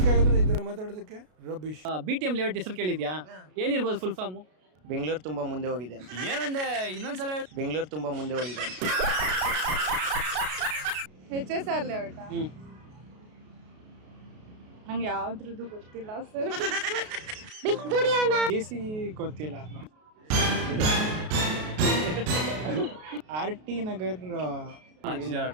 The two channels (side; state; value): left; late; 33 ms